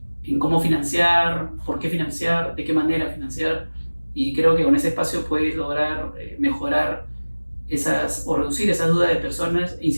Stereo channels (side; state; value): both; inverted; correlation -1.00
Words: cómo financiar, por qué financiar, de qué manera financiar. Y creo que con ese espacio puedes lograr mejorar o reducir esas dudas de personas e